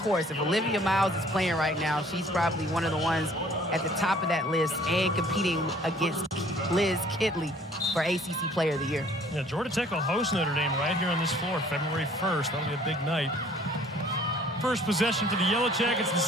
course, if Olivia Miles is playing right now, she's probably one of the ones at the top of that list and competing against Liz Kidley for ACC Player of the Year. Yeah, Georgia Tech will host Notre Dame right here on this floor February 1st. That'll be a big night. First possession for the Yellow Jackets in the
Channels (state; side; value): normal; both; correlation 0.55